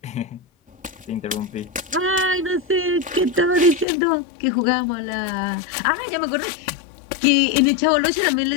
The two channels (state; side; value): drops out; right; at 3.9 s